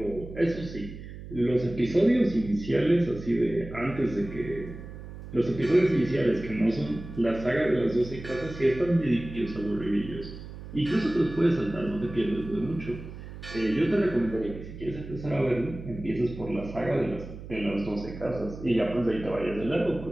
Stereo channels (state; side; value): noise; right; hum, 12 dB below the sound